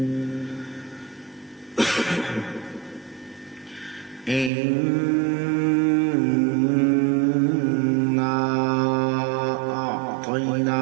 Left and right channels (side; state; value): left; drops out; at 4.5 s